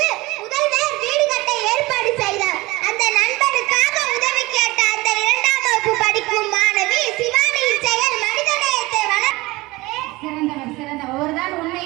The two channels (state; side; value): quieter; left; 21.2 dB